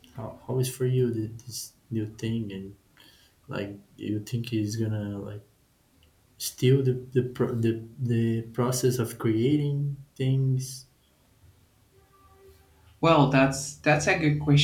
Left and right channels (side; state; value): both; identical; correlation 1.00